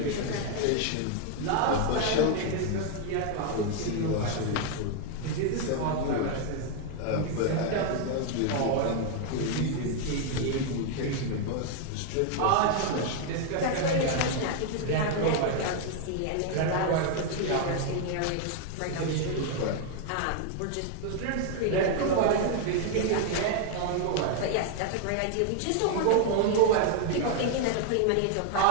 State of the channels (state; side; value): different; both; correlation 0.00